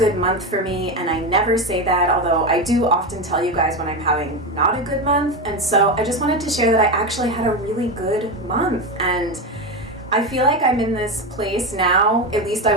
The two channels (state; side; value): normal; both; correlation 0.16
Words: month for me, and I never say that, although I do often tell you guys when I'm having not a good month, and so I just wanted to share that I actually had a really good month, and I feel like I'm in this place now, at least I